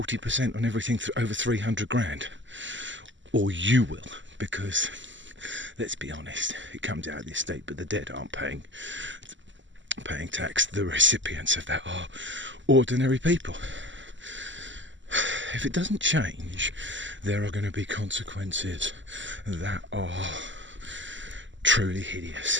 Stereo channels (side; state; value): left; late; 0.54 ms